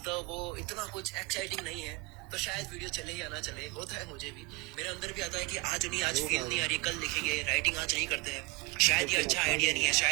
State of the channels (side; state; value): left; quieter; 23.8 dB